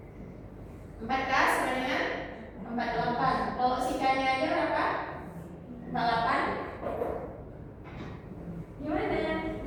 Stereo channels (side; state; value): both; identical; correlation 1.00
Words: 4K sama dengan 48. Kalau si K-nya aja berapa? 48. Gimana?